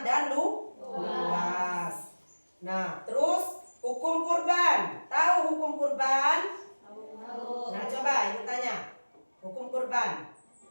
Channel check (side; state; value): both; inverted; correlation -1.00